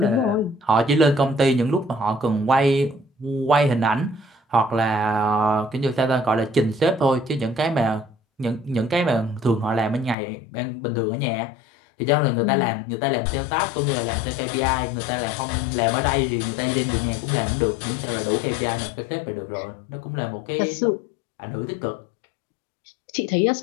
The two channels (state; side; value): drops out; right; at 10.2 s